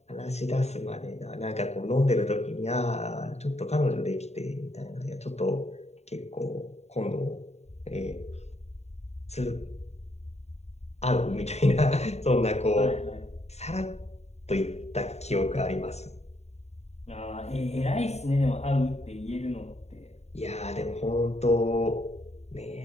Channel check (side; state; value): right; late; 0.32 ms